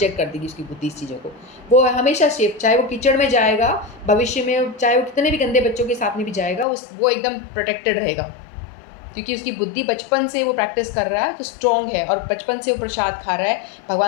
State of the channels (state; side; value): drops out; right; at 6.7 s